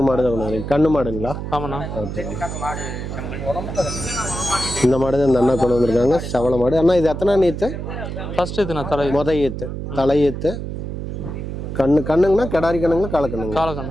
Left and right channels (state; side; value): noise; right; hum, 6 dB below the sound